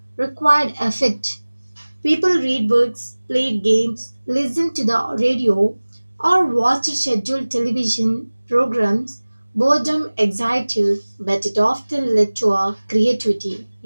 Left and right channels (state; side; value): inverted; both; correlation -1.00